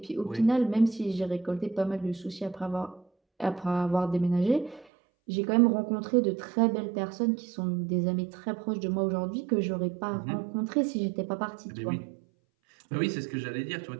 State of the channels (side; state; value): left; drops out; at 4.9 s